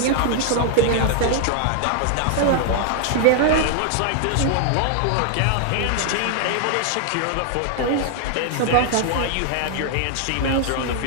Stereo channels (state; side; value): different; both; correlation 0.00